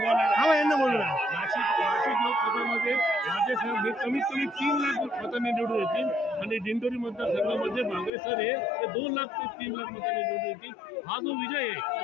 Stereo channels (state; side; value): drops out; right; at 8.1 s